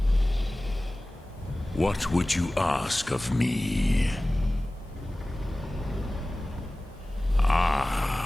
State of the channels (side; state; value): both; normal; correlation 0.97